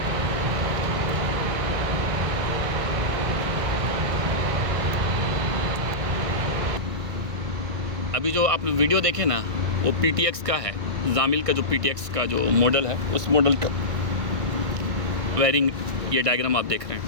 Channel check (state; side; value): late; left; 1.9 ms